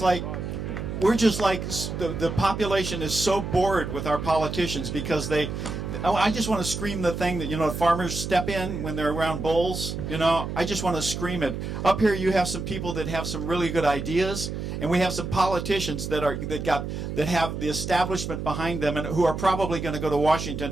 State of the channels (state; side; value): noise; right; hum, 5 dB below the sound